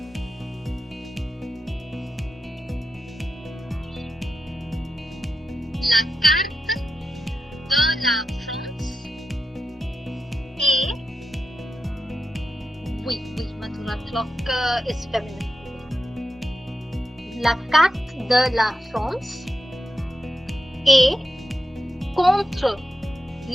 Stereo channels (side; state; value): both; normal; correlation 0.89